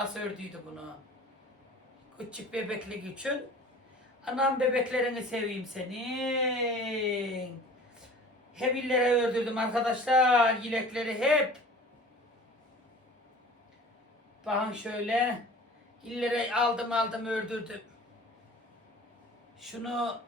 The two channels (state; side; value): normal; both; correlation 0.43